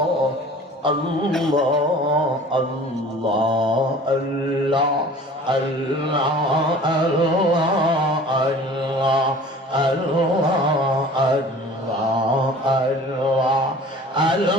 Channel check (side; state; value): both; normal; correlation 0.45